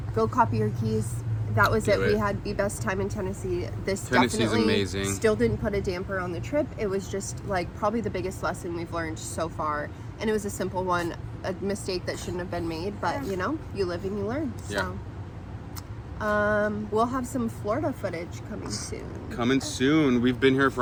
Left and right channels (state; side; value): identical; both; correlation 1.00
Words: go copy your keys. That was Do it. We it. had the best time in Tennessee. This Tennessee's definitely amazing. still didn't put a damper on the trip. It was just like probably the biggest lesson we've learned so far, and it was a simple one, a mistake that shouldn't have been made, but you live and you learn. So we'll have some Florida footage coming soon. Coming soon. We've been here